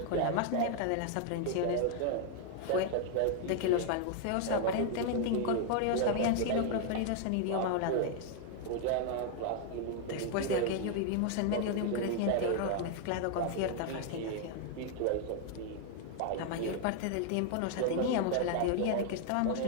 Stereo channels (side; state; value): both; different; correlation 0.00